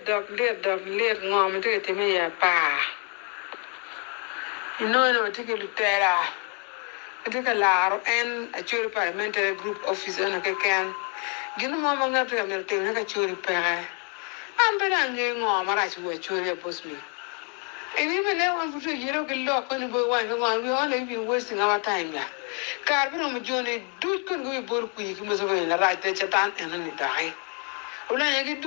ngom to get me ya pa. No take lutera. Take a laro and a churi parliamentary group office on a can. Gino mama ngata ya merte na ka churi pere. Ambera nge ngom ara churi churi bos mi. And even now, one for you don't get locked when you go one. We only been wasting our time. Carbon on journey, do couldn't go both quick, must have been a right there, Chatan, and then it die. Well, I get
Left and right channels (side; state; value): right; quieter; 36.8 dB